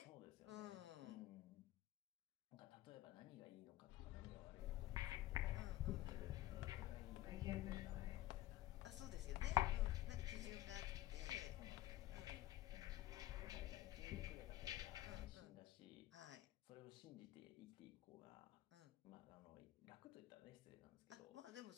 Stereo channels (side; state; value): right; quieter; 14.8 dB